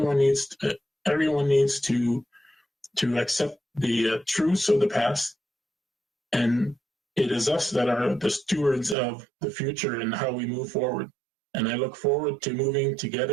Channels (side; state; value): left; drops out; at 9.0 s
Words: needs to accept the truths of the past, and it is us that are the stewards of the future and how we move forward. And I look forward to moving